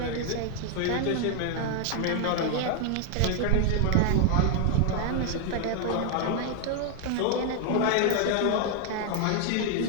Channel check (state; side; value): different; both; correlation 0.00